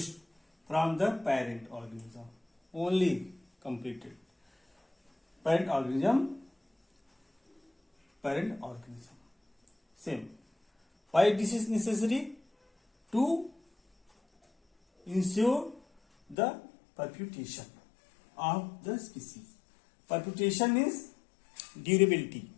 from the parent organism. Only completed. Parent organism. Same. Why this is necessary? To ensure the perpetuation of the species. Perpetuation is durability,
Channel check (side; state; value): right; drops out; at 16.4 s